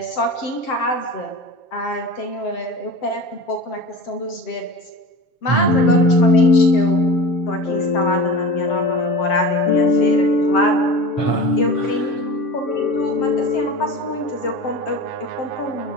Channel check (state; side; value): late; right; 7.6 ms